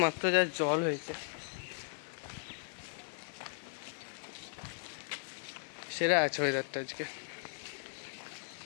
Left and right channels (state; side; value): silent; right; digital silence